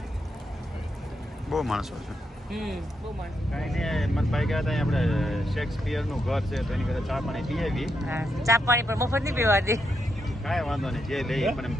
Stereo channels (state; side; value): normal; both; correlation 0.82